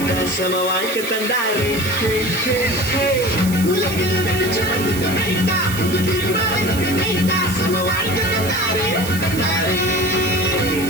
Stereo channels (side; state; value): right; noise; hiss, 10 dB below the sound